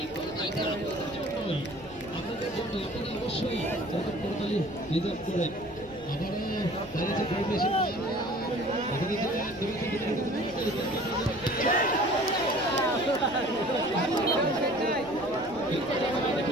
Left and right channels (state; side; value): noise; right; rumble, 22 dB below the sound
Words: কোথায় আপনাদের জন্য আপনারা অবশ্যই এরকম করতালি রিজার্ভ করেন আবারও দাঁড়িয়েছে পরিবেশন